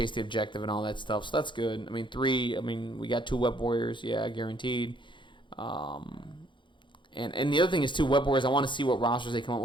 the objective and all that stuff. So that's good. 3. We got 2 Web Warriors, yeah, guaranteed. And the other thing is, too, Web Warriors, I want to see what rosters they come up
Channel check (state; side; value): late; right; 0.23 ms